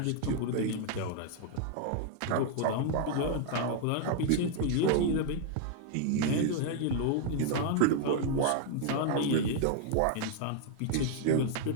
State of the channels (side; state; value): both; different; correlation 0.00